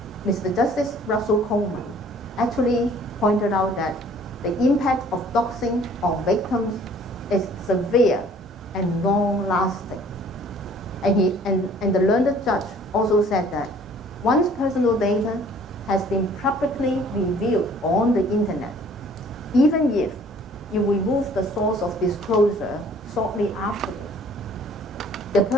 Mr. Justice Russell Coleman actually pointed out that the impact of doxing on victims is severe and long-lasting. And the learned judge also said that once personal data has been publicly revealed on the internet, even if you remove the source of disclosure shortly afterwards, the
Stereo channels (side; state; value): both; normal; correlation 0.55